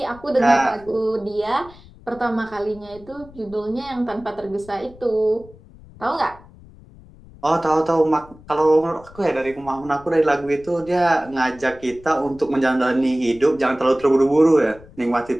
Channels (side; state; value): left; noise; rumble, 22 dB below the sound